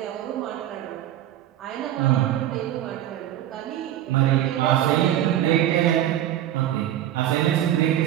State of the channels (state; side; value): quieter; left; 12.3 dB